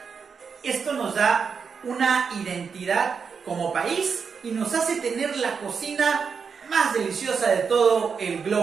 Esto nos da una identidad como país y nos hace tener la cocina más deliciosa de todo el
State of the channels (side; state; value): left; quieter; 5.9 dB